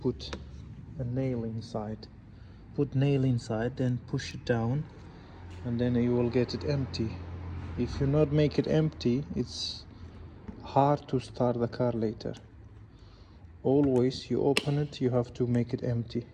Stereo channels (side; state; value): both; identical; correlation 1.00